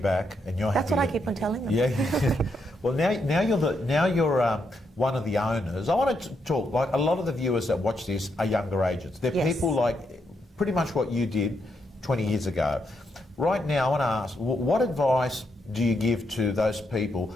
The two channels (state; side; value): normal; both; correlation 0.79